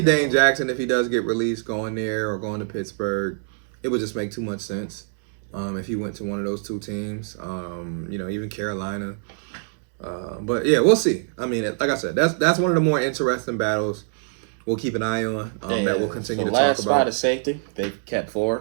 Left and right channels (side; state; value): left; silent; digital silence